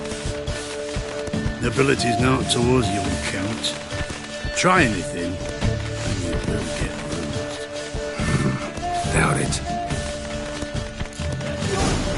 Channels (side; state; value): both; identical; correlation 1.00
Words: Nobility's not towards young Count. Try anything, and you will get bruised. Doubt it.